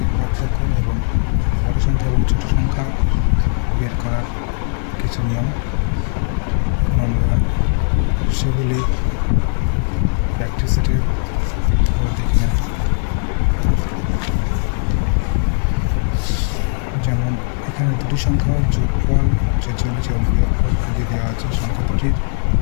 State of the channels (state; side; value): silent; right; digital silence